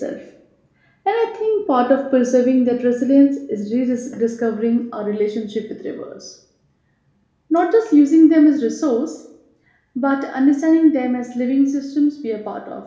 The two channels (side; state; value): both; identical; correlation 1.00